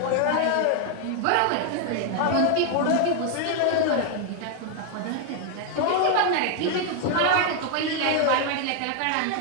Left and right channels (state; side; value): different; both; correlation 0.00